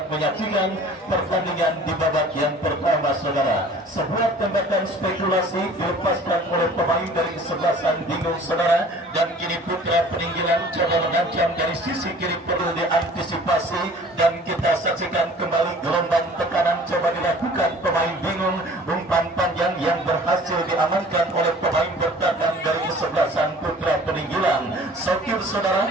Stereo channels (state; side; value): normal; both; correlation 0.48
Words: menyaksikan pertandingan di babak yang pertama saudara. Sebuah tembakan spekulasi dilepaskan oleh pemain dari kesebelasan bingung saudara, dan kini Putra Peninggalan coba mengancam dari sisi kiri perlu diantisipasi, dan kita saksikan kembali gelombang tekanan coba dilakukan pemain bingung. Umpan panjang yang berhasil diamankan oleh pemain bertahan dari kesebelasan Putra Peninggalan. Sokir